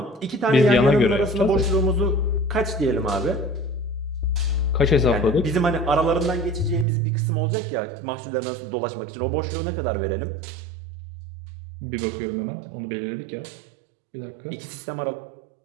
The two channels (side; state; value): left; drops out; at 6.9 s